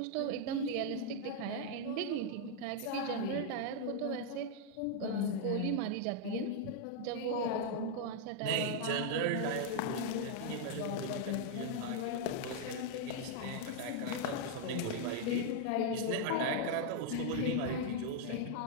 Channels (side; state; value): both; different; correlation 0.00